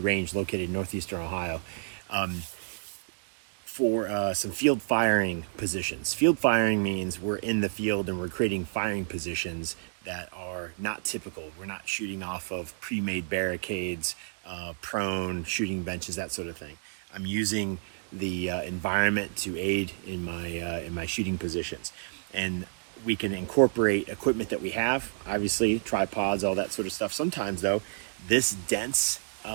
range, located in northeastern Ohio, for some field firing positions. Field firing means we're in the field and we're creating firing positions that are not typical. We're not shooting off of pre-made barricades, prone, shooting benches, that sort of thing. I'm using the environment to aid in my shooting positions. And we can incorporate equipment that we have, obviously tripods, all that sort of stuff. Sometimes though, this dense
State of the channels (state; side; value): silent; left; digital silence